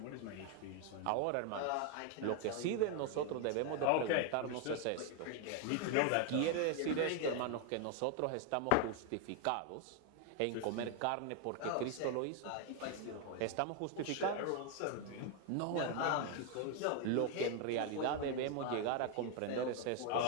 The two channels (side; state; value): both; different; correlation 0.01